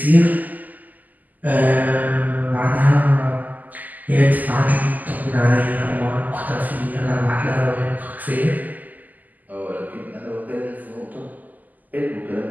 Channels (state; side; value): late; left; 0.082 ms